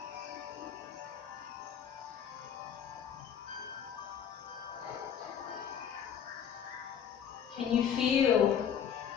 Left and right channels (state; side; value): quieter; right; 8.4 dB